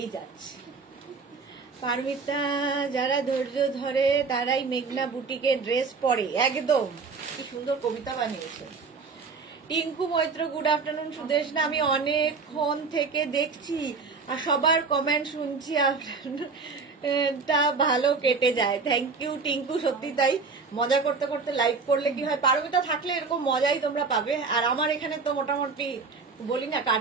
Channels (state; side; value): quieter; left; 4.6 dB